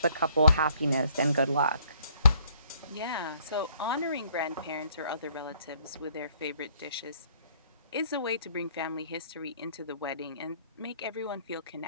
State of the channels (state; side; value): inverted; both; correlation -0.63